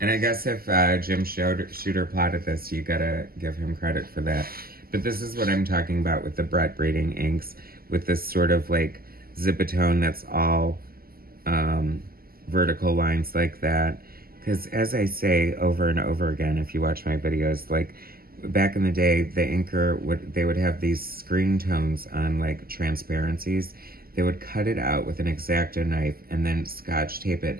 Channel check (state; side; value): late; left; 0.43 ms